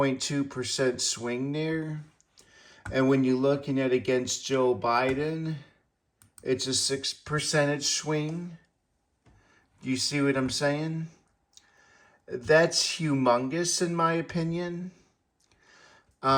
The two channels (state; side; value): identical; both; correlation 1.00